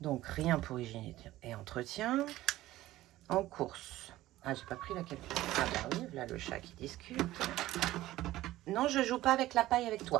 rien pour hygiène et entretien. En course. Ah, j'ai pas pris la capsule. Ah bah oui, là le chat qui discute. Non, je joue pas avec la paille avec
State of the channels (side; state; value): left; quieter; 15.9 dB